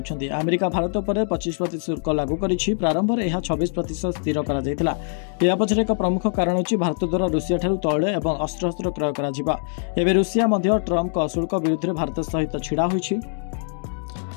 अमेरिका भारत पर 25% शुल्क लागू करिछि। प्रारंभ में यह 26% स्थिर करा जायतिला। या पछरे एक प्रमुख कारण अछि भारत द्वारा रूसिया ठारू तैल एवं अस्त्र क्रय करा जिबा। एबे रूसिया मध्य ट्रम्प का शुल्क विरुद्ध में भारत सहित छिड़ा होइछि।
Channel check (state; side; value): silent; right; 63 dB below the other